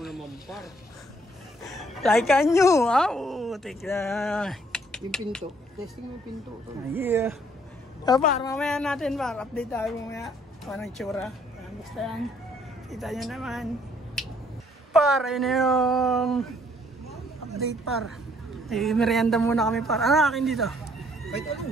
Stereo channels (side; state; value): both; normal; correlation 0.65